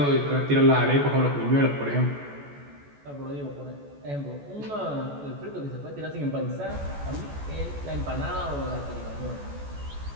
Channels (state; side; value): late; left; 14 ms